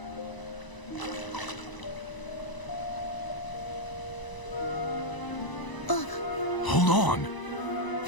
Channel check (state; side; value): late; right; 1.0 ms